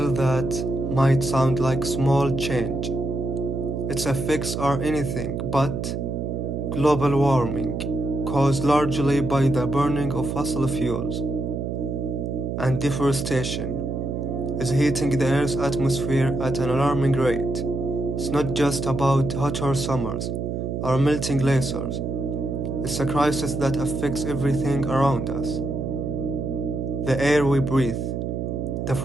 that might sound like small change, its effects are anything but global warming, caused largely by the burning of fossil fuels and deforestation, is heating the Earth's atmosphere at an alarming rate. It's not just about hotter summers or melting glaciers. It's a crisis that affects everything around us. The air we breathe, the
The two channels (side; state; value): right; noise; hum, 3 dB below the sound